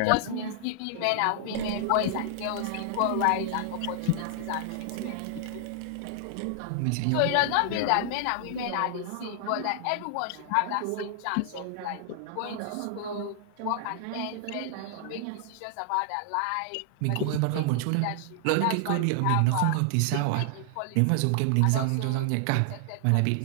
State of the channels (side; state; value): both; different; correlation 0.00